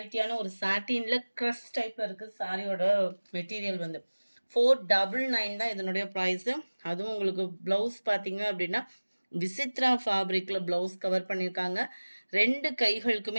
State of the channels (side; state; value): both; inverted; correlation -1.00